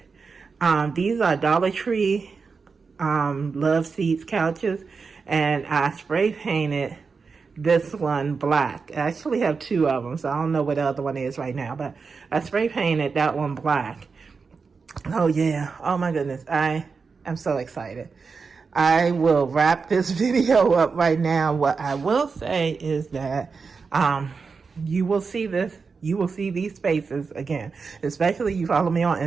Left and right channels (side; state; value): left; quieter; 5.0 dB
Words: These are Dollar Tree love seats couches, and I spray painted this one black. I actually have two of them, so I don't know what the other one is right now, but I spray painted that one black. Oh yeah, oh my goodness, I am so excited. I will wrap this video up right now. What I will say is that you will see these spaces again, especially you follow me on